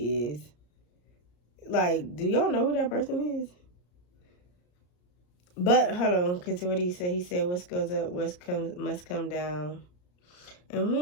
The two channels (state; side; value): late; right; 34 ms